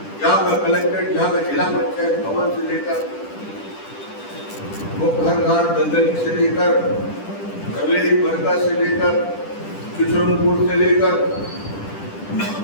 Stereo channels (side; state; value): right; late; 10 ms